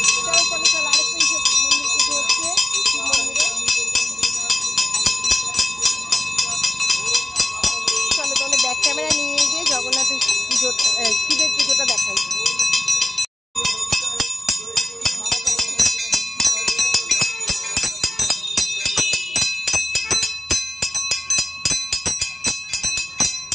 চলো চলো চলো, আরেকটা মন্দির পুজো হচ্ছে শিব মন্দিরে। চলো তাহলে ব্যাক ক্যামেরা নিয়ে গিয়ে জগন্নাথের পুজো, শিবের পুজোটা দেখাই।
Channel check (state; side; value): normal; both; correlation 0.95